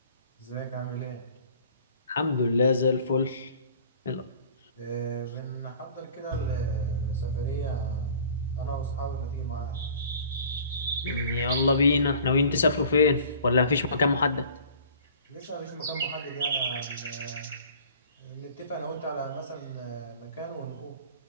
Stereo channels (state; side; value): inverted; both; correlation -0.48